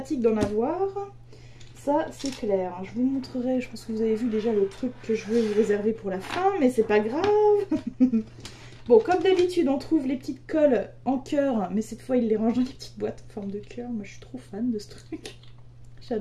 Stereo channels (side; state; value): both; identical; correlation 1.00